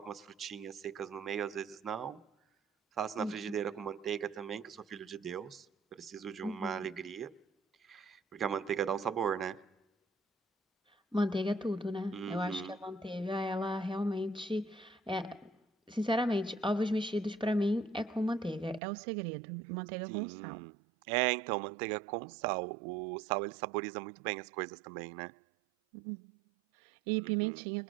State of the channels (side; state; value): left; drops out; at 18.8 s